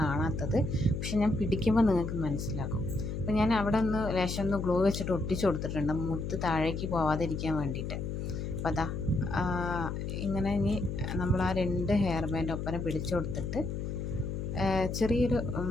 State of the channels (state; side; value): noise; left; hum, 4 dB below the sound